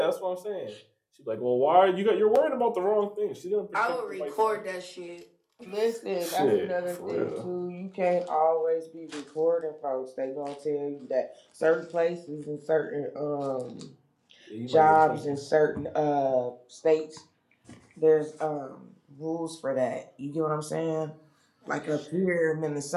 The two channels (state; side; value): identical; both; correlation 1.00